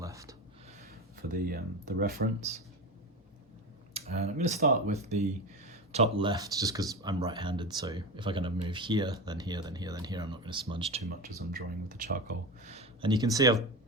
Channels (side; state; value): both; normal; correlation 0.23